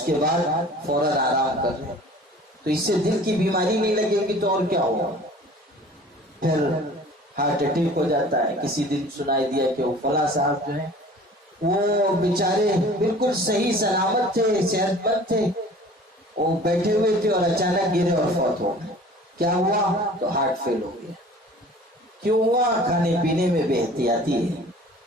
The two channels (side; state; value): both; normal; correlation 0.46